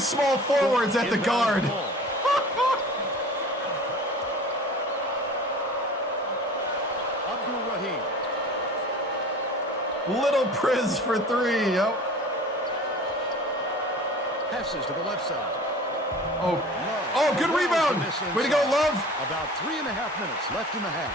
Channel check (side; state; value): both; normal; correlation 0.42